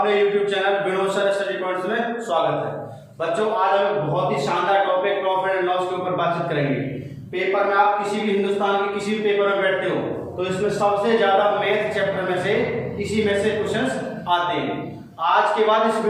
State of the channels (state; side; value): identical; both; correlation 1.00